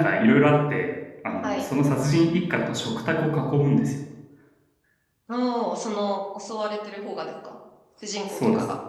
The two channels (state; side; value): identical; both; correlation 1.00